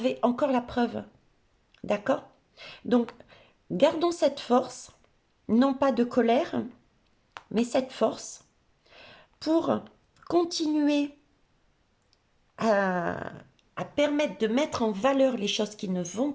encore la preuve. D'accord? Donc, gardons cette force, non pas de colère, mais cette force pour continuer à, à permettre de mettre en valeur les choses qui ne vont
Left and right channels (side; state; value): both; identical; correlation 1.00